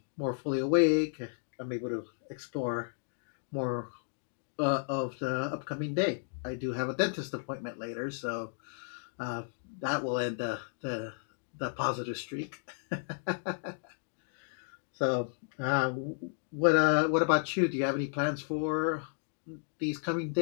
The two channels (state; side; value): silent; right; digital silence